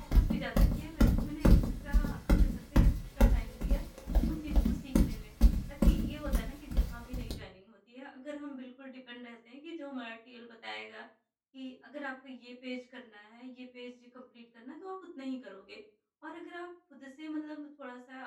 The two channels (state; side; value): identical; both; correlation 1.00